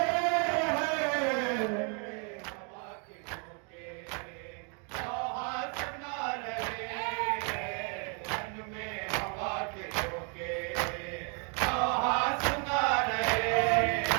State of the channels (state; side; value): quieter; left; 37.7 dB